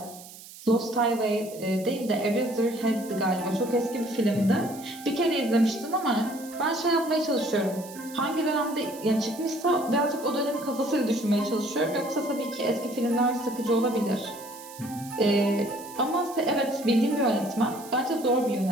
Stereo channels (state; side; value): noise; right; hiss, 17 dB below the sound